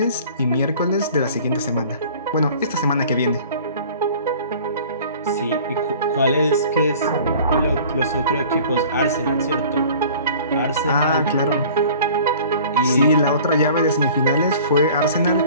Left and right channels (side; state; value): both; inverted; correlation -0.46